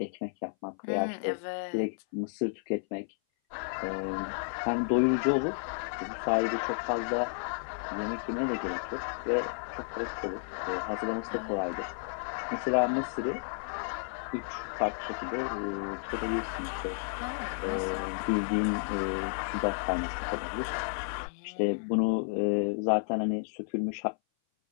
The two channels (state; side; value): silent; right; 56 dB below the other